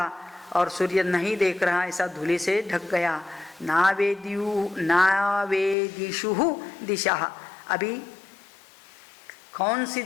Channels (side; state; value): right; drops out; at 5.8 s